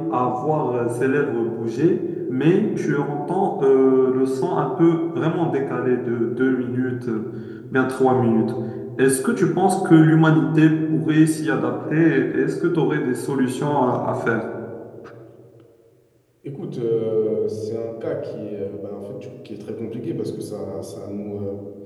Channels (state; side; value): identical; both; correlation 1.00